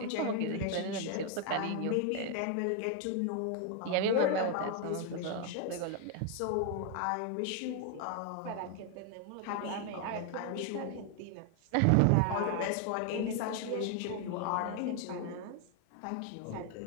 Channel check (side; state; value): both; different; correlation 0.00